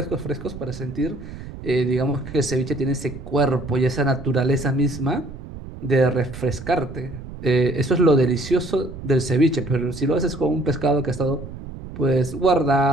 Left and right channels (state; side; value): noise; right; rumble, 12 dB below the sound